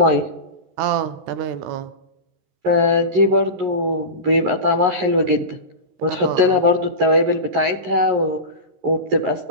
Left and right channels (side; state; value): left; late; 13 ms